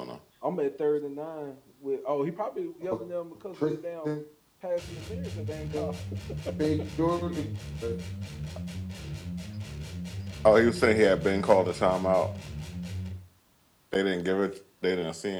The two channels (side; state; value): both; identical; correlation 1.00